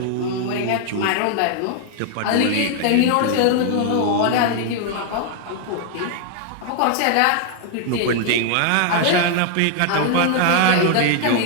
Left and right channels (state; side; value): different; both; correlation 0.00